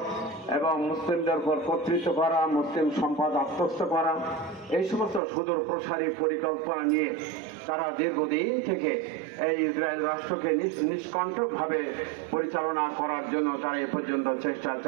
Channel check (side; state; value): left; drops out; at 5.2 s